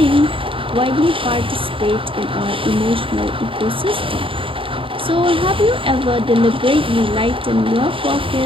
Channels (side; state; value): left; late; 0.26 ms